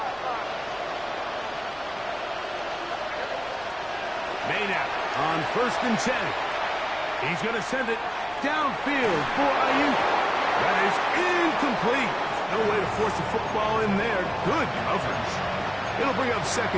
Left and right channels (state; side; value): noise; left; hum, 26 dB below the sound